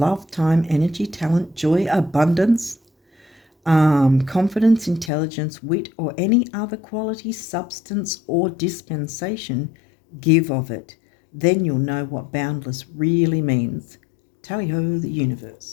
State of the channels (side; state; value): right; drops out; at 5.1 s